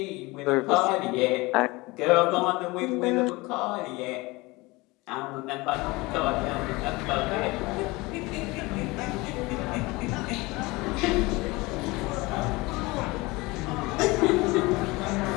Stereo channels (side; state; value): right; quieter; 23.0 dB